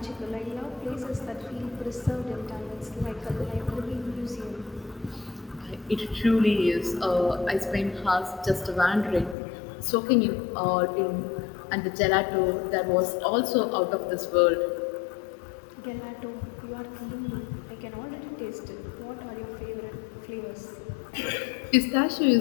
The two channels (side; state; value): right; drops out; at 9.3 s